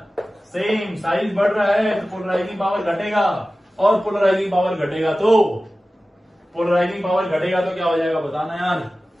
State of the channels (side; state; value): both; normal; correlation 0.96